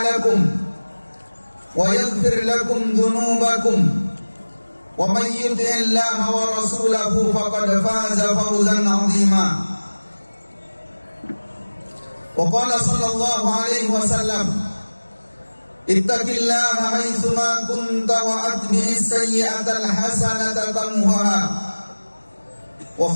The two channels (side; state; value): both; inverted; correlation -1.00